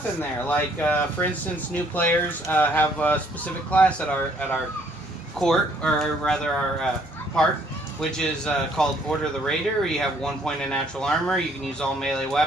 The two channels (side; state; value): both; normal; correlation 0.64